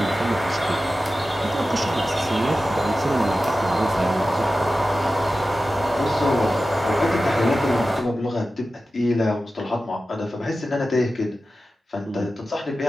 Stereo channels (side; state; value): both; normal; correlation 0.94